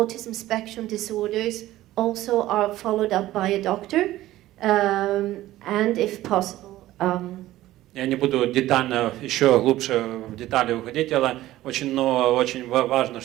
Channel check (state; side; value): quieter; left; 15.4 dB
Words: spectrum disorders also are followed up by a doctor, and if possible. Я не буду детально, еще глубже в детали уходить, но очень важно,